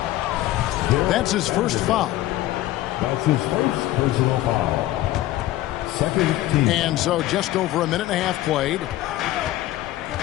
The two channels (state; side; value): quieter; right; 15.3 dB